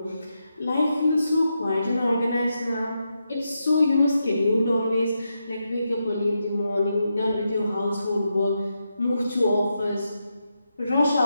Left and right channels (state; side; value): inverted; both; correlation -0.85